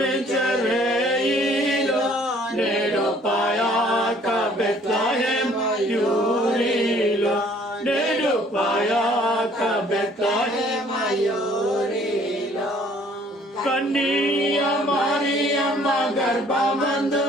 నేడు పాయాక బెత్లెహేమ్ యూరిలో నేడు పాయాక బెత్లెహేమ్ యూరిలో కన్నియ మరియమ్మ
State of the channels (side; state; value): both; normal; correlation 0.58